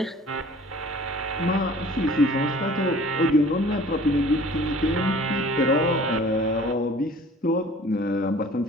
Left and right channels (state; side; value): normal; both; correlation 0.48